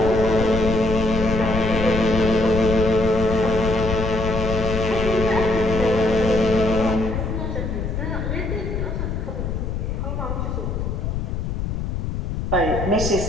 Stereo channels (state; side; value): noise; left; rumble, 3 dB below the sound